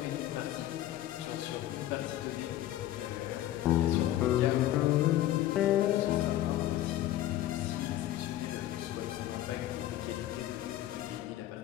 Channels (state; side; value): quieter; right; 13.8 dB